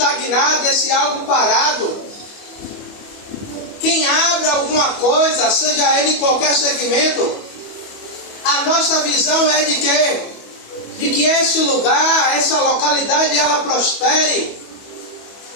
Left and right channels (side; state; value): right; late; 25 ms